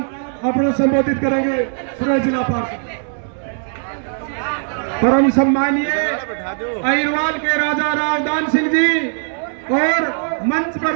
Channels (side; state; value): left; silent; 67 dB below the other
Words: अपना संबोधित करेंगे। सुरेश जिला पार्षद। परम सम्मानीय अहिरवाल के राजा रावदान सिंह जी और मंच पर